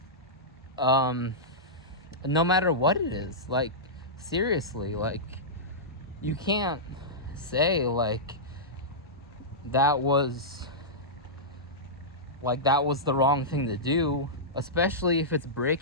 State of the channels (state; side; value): normal; both; correlation -0.13